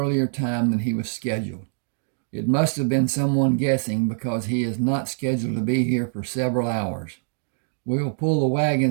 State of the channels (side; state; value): left; silent; 63 dB below the other